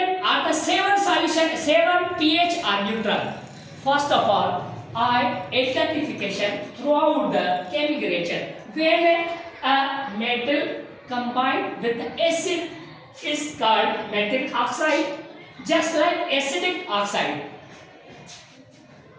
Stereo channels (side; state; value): both; identical; correlation 1.00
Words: are the 7 solution, 7 pH are neutral. First of all, identification throughout the chemical reaction. When a metal combined with the acid is called metallic oxide, just like acidic oxide.